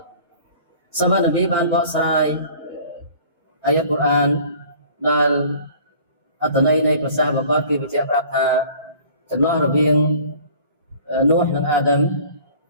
សម្បត្តិនប៊ីបានបកស្រាយអាយ៉ាត់កូរ៉ានដែលអត្ថន័យនៃប្រសាសន៍របស់គាត់គឺបញ្ជាក់ប្រាប់ថាចន្លោះរវាងនូហ៍និងអាដាម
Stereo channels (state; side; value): inverted; both; correlation -0.49